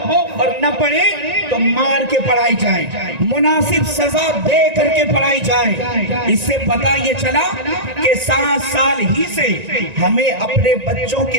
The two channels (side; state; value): left; late; 1.9 ms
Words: اور نہ پڑھے تو مار کے پڑھائی جائے، مناسب سزا دے کر کے پڑھائی جائے۔ اس سے پتہ یہ چلا کہ 7 سال ہی سے ہمیں اپنے بچوں کے